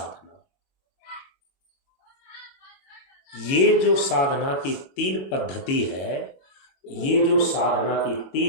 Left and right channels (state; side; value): late; right; 22 ms